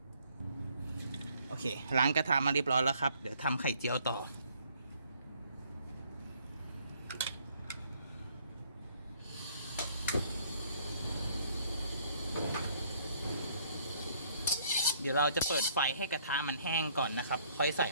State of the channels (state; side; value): inverted; both; correlation -0.62